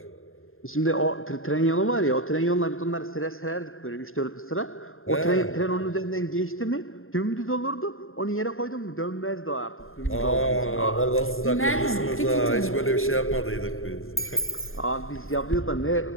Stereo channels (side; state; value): right; late; 0.60 ms